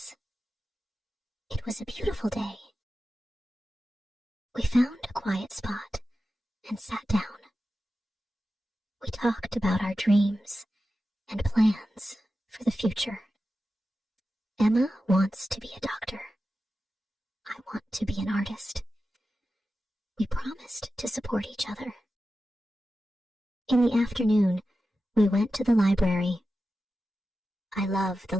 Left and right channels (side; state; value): both; normal; correlation 0.92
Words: It was a beautiful day. We found a quiet spot and sat down. We talked about our dreams and plans for the future. Emma wants to be a doctor. I want to be an artist. We promised to support each other. In the afternoon, we went to the library. I love the